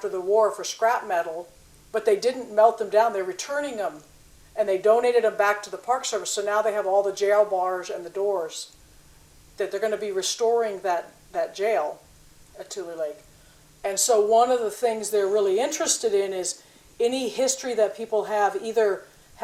the war for scrap metal, but they didn't melt them down. They're returning them, and they donated them back to the Park Service. So now they have all the jail bars and the doors. That they're going to be restoring that jail at Tule Lake. And so one of the things they're really interested in is any history that people have, either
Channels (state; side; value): identical; both; correlation 1.00